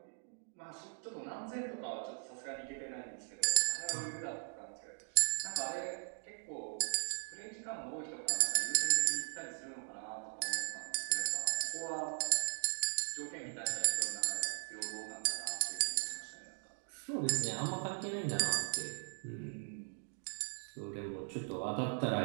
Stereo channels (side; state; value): left; silent; 52 dB below the other